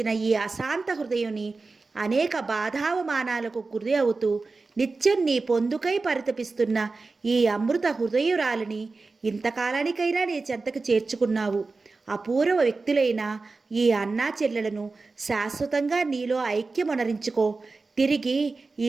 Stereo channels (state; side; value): quieter; left; 3.9 dB